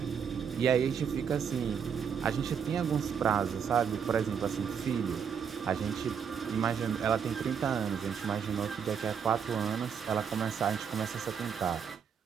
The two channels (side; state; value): left; quieter; 7.1 dB